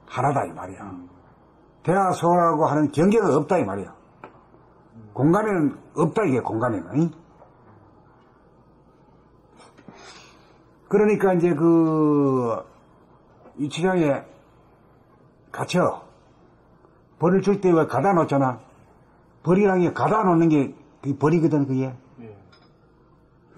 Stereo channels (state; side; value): identical; both; correlation 1.00